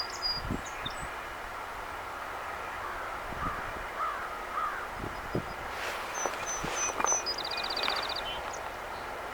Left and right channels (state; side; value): identical; both; correlation 1.00